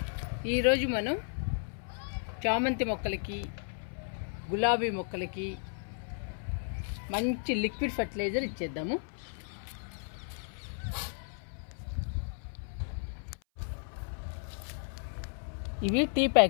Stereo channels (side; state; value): right; silent; 55 dB below the other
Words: ఈరోజు మనం చామంతి మొక్కలకి, గులాబీ మొక్కలకి మంచి లిక్విడ్ ఫర్టిలైజర్ ఇచ్చేద్దాము. ఇవి టీ